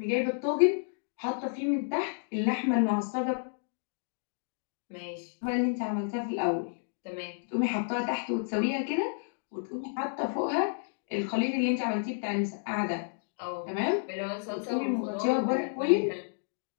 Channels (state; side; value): silent; right; digital silence